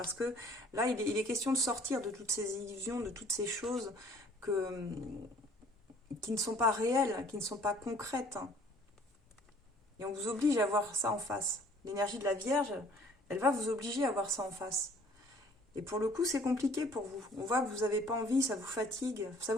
que là il est question de sortir de toutes ces illusions, de toutes ces choses qui ne sont pas réelles, qui ne sont pas concrètes, hein. Et on vous oblige à voir ça en face. L'énergie de la Vierge, elle va vous obliger à voir ça en face. Et pour le coup, c'est compliqué pour vous. On voit que vous n'avez pas envie, ça vous fatigue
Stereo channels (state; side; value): normal; both; correlation 0.55